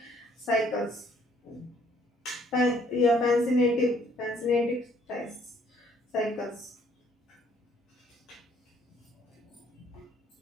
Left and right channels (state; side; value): normal; both; correlation 0.63